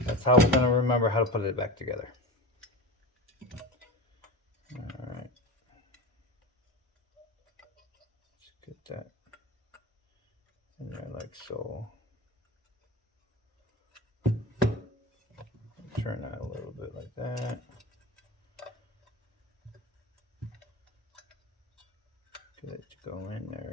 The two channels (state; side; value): normal; both; correlation 0.28